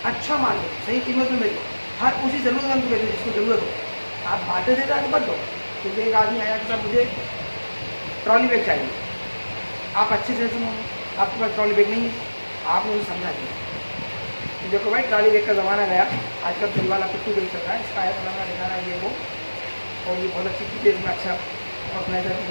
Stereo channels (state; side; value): inverted; both; correlation -1.00